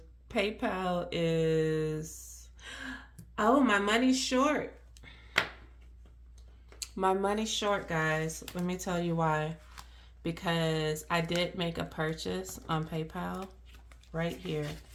PayPal is, oh, my money's short. My money's short, guys. Let me tell you why. Because I did make a purchase on PayPal right here,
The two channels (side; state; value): both; identical; correlation 1.00